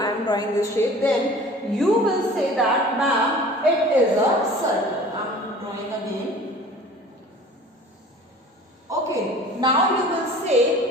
then you will say that ma'am it is a circle. I am drawing again. Okay, now you will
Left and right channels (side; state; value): both; normal; correlation 0.44